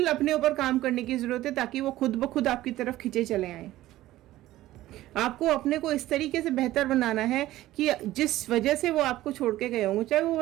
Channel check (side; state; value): left; quieter; 15.6 dB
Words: अपने ऊपर काम करने की ज़रूरत है, ताकि वो खुद ब खुद आपकी तरफ खिंचे चले आए, आपको अपने को इस तरीके से बेहतर बनाना है कि जिस वजह से वो आपको छोड़ के गए होंगे, चाहे वो